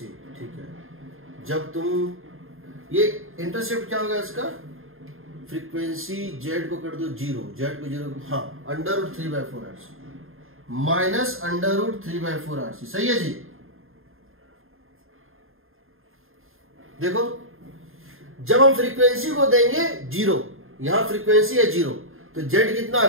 ठीक है, जब तुम ये इंटरसेप्ट क्या होगा इसका, फ्रीक्वेंसी z को कर दो 0, z को 0, हाँ, under root 3/4 RC minus under root 3/4 RC। सही है जी। देखो, जब हम फ्रीक्वेंसी को देंगे 0, यहां फ्रीक्वेंसी है 0, तो z कितना आ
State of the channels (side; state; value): left; late; 0.60 ms